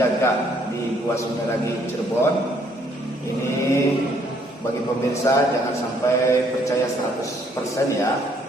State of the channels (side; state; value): both; normal; correlation 0.66